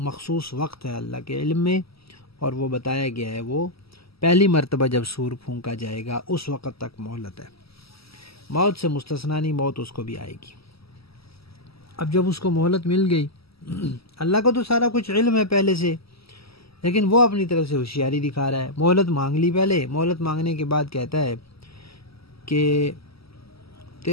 وقت ہے اللہ کے علم میں، اور وہ بتایا گیا ہے وہ پہلی مرتبہ جب سور پھونکا جائے گا اس وقت تک مہلت ہے، موت سے مستثنا نہیں، موت اس کو بھی آئے گی۔ اب جب اس کو مہلت مل گئی، اللہ کو تو سارا کچھ علم ہے پہلے سے، لیکن وہ اپنی طرف سے ہوشیاری دکھا رہا ہے۔ مہلت مانگ لی، پہلے مہلت مانگنے کے بعد کہتا ہے کہ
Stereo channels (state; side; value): late; right; 0.76 ms